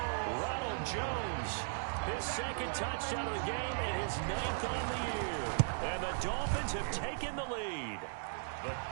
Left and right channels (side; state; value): left; silent; digital silence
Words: Ronald Jones, his 2nd touchdown of the game and his 9th on the year. And the Dolphins have taken the lead. The